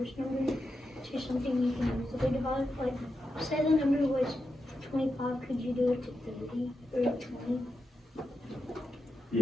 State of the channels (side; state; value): both; normal; correlation 0.88